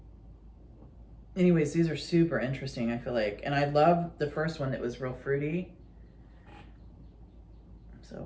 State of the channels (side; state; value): both; identical; correlation 1.00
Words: Anyways, these are super interesting, I feel like, and I love the first one that was real fruity.